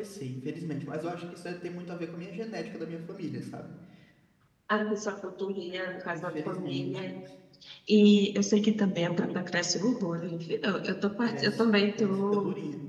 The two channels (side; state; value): both; identical; correlation 1.00